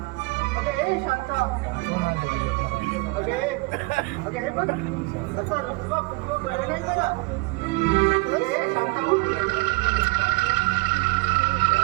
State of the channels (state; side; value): quieter; left; 25.1 dB